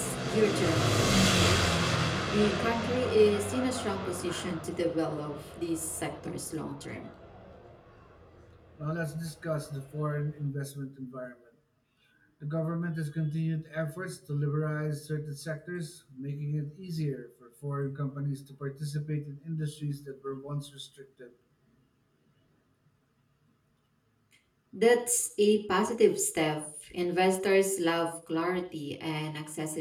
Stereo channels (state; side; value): identical; both; correlation 1.00